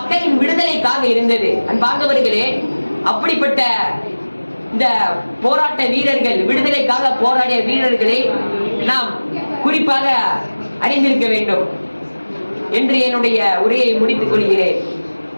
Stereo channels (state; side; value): inverted; both; correlation -1.00